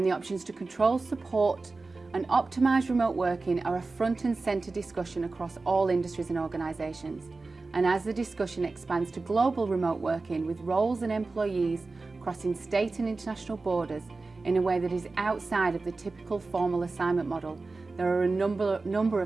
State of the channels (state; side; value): quieter; left; 3.7 dB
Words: the options to control, support and optimise remote working are a front and centre discussion across all industries and organisations. And as the discussion expands to global remote working with roles and employees crossing state and international borders in a way that is outside of the typical formal assignment model, there are a number